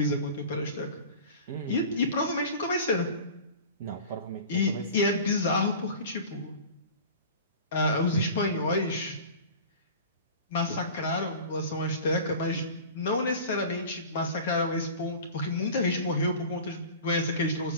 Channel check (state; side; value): inverted; both; correlation -0.38